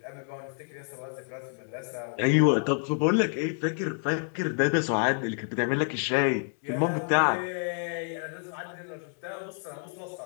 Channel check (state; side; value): silent; right; 56 dB below the other